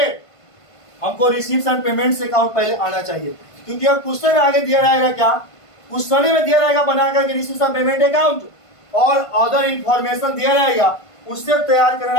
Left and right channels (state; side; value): late; right; 1.5 ms